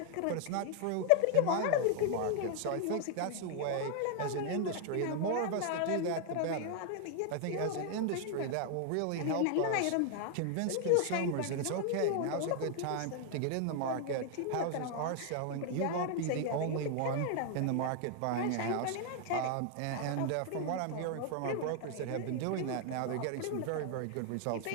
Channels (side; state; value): both; different; correlation 0.00